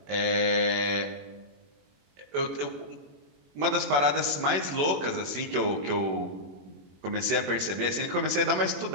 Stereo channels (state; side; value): late; left; 21 ms